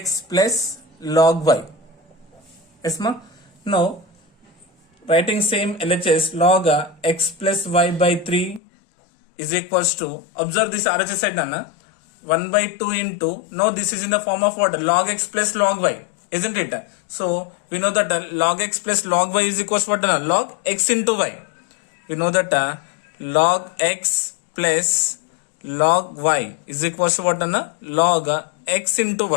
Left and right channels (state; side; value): drops out; right; at 8.6 s